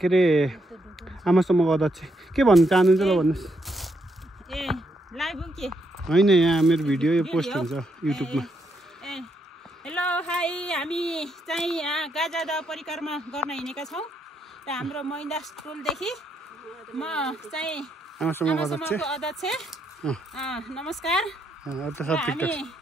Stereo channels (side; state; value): both; normal; correlation 0.78